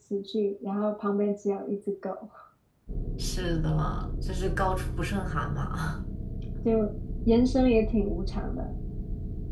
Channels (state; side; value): identical; both; correlation 1.00